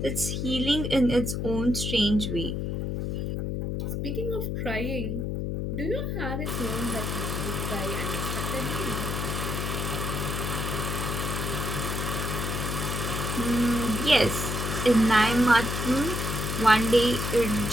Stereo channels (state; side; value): noise; left; hum, 2 dB below the sound